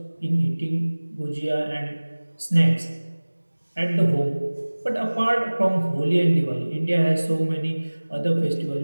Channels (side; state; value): both; inverted; correlation -1.00